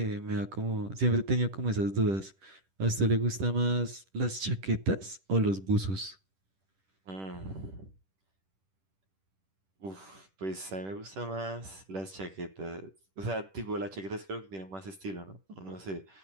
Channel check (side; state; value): left; late; 10 ms